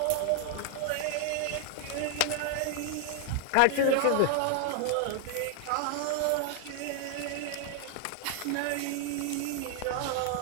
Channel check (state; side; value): different; both; correlation 0.00